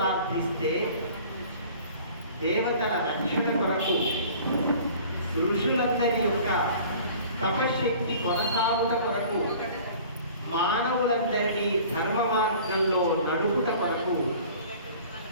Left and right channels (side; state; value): both; inverted; correlation -0.47